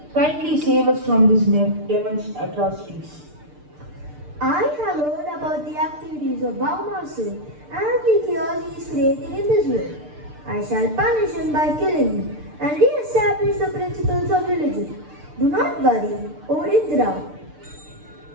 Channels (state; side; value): late; left; 6.7 ms